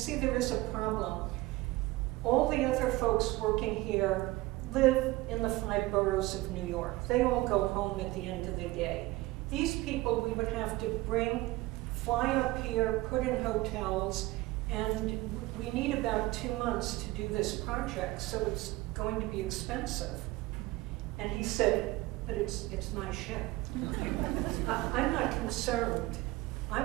there is a problem. All the other folks working here live in the 5 boroughs of New York. They all go home at the end of the day. These people we would have to fly up here, put in hotels, and we need about 2 months to do this project, so it's going to be expensive. And he said, but it's my ship. I'm not concerned.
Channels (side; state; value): left; quieter; 19.4 dB